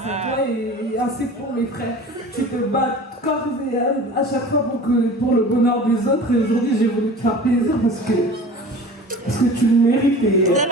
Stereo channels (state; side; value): normal; both; correlation 0.39